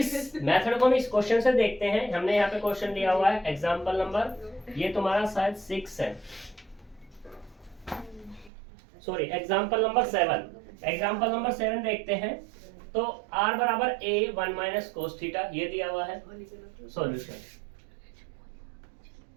को हम इस क्वेश्चन से देखते हैं। हमने यहाँ पे क्वेश्चन दिया हुआ है एग्जांपल नंबर, ये तुम्हारा शायद 6 है, sorry example number 7। Example number 7 देखते हैं। तो r बराबर a 1 माइनस कोस थीटा ये दिया हुआ है सॉल्यूशन।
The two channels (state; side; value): drops out; left; at 8.5 s